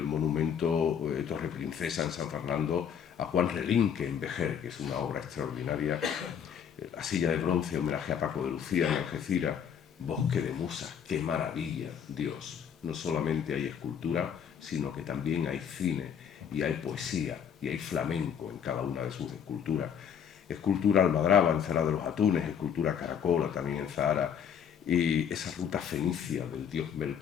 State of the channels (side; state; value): right; quieter; 8.0 dB